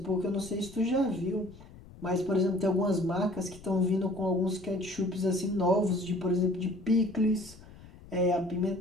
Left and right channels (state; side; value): noise; left; rumble, 20 dB below the sound